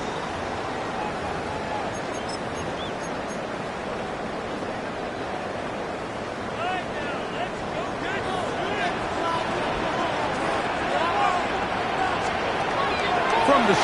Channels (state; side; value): identical; both; correlation 1.00